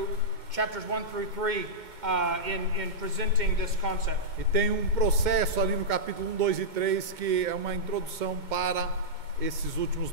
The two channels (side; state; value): left; late; 2.2 ms